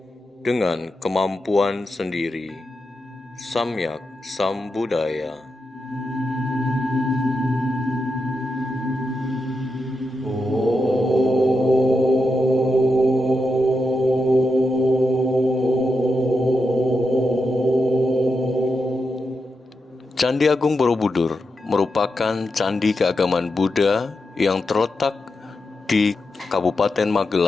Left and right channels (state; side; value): normal; both; correlation 0.87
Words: dengan kemampuan sendiri, Samyak Sambuddhaya. Candi Agung Borobudur merupakan candi keagamaan Buddha yang terletak di Kabupaten